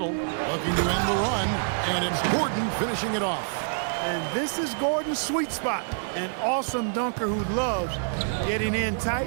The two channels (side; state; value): left; silent; 60 dB below the other